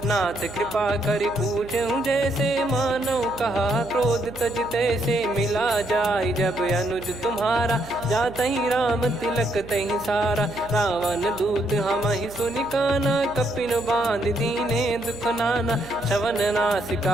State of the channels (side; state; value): right; noise; hum, 17 dB below the sound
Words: नाथ कृपा करि पूछूं जैसे मानव कहा क्रोध तज तैसे मिला जाय जब अनुज तुम्हारा जात ही राम तिलक तही सारा रावण दूत हम ही सुनि काना कपिन बांध दीने दुख नाना श्रवण